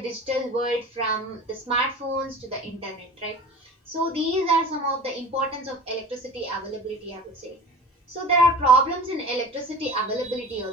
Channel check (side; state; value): both; normal; correlation 0.38